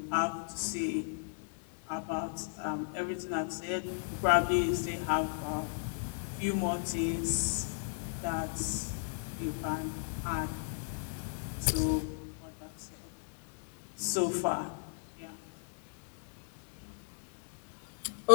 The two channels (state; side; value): silent; right; digital silence